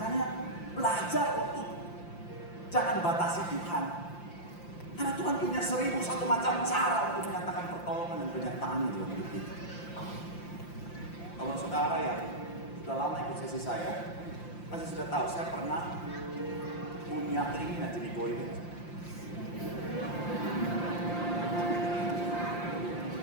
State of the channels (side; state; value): right; late; 5.8 ms